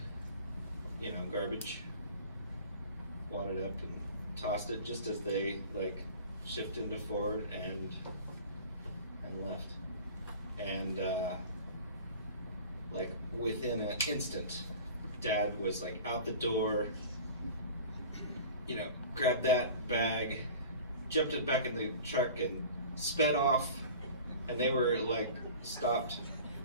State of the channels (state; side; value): inverted; both; correlation -0.41